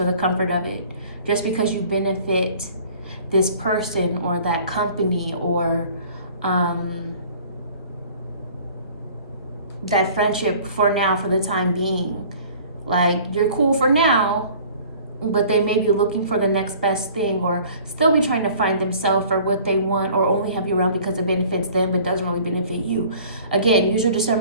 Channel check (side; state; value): both; inverted; correlation -0.50